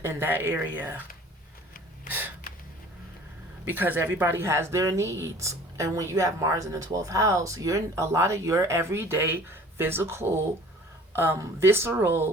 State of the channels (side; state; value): both; normal; correlation 0.48